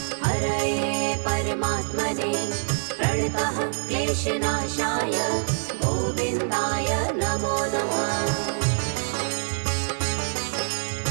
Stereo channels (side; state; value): left; silent; digital silence